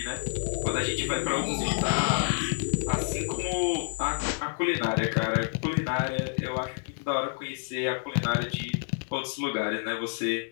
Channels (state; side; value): silent; right; digital silence